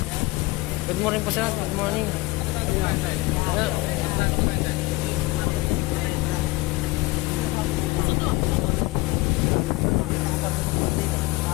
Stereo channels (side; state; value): right; quieter; 20.9 dB